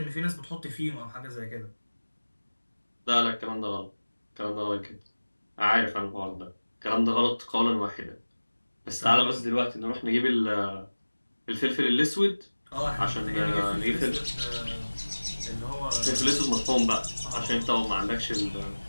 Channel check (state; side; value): inverted; both; correlation -1.00